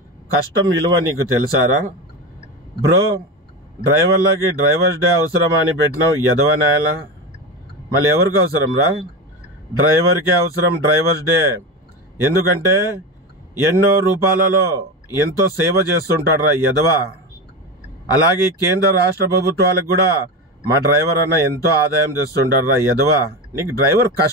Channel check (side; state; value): both; normal; correlation 0.20